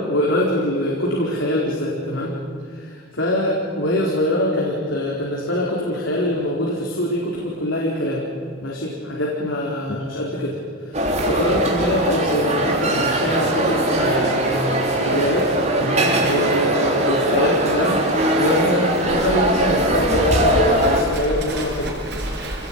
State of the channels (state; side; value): normal; both; correlation 0.12